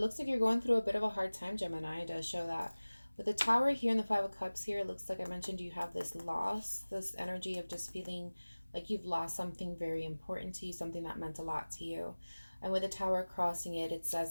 like you're going through a bit of a hard time, Gemini. It does show that. With the Tower here and the Five of Cups here, it looks like I mentioned you have this loss, this energy of just feeling like you've lost something very important to you, something that meant a lot to you. And with the Tower crossing it, it's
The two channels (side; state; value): both; inverted; correlation -1.00